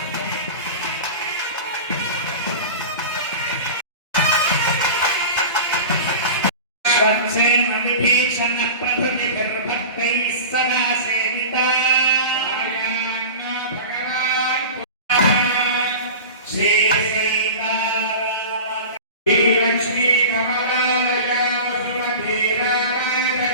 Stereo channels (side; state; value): both; inverted; correlation -0.34